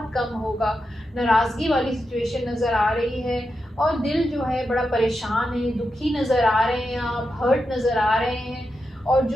कम होगा, नाराज़गी वाली सिचुएशन नज़र आ रही है और दिल जो है बड़ा परेशान है, दुखी नज़र आ रहे हैं, आप हर्ट नज़र आ रहे हैं और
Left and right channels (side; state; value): both; normal; correlation 0.88